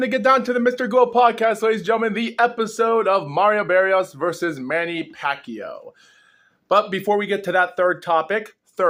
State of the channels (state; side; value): identical; both; correlation 1.00